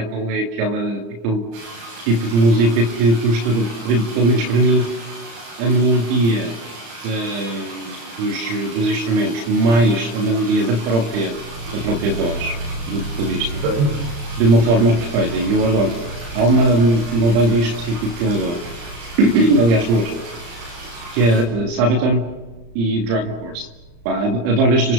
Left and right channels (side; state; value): left; late; 35 ms